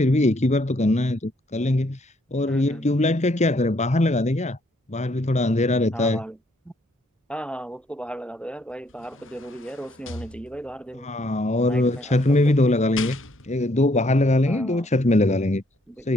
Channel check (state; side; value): normal; both; correlation 0.68